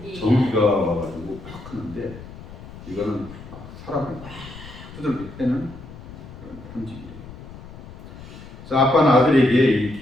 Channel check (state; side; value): noise; left; rumble, 15 dB below the sound